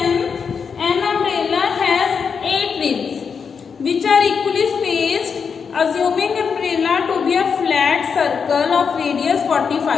An umbrella has 8 ribs which are equally spaced, assuming umbrella to be a flat circle of radius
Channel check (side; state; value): right; quieter; 6.1 dB